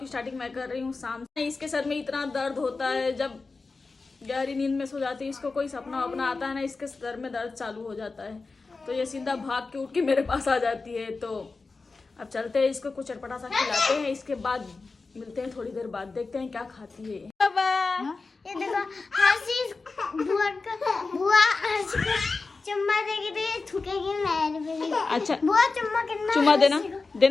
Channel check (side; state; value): right; quieter; 4.0 dB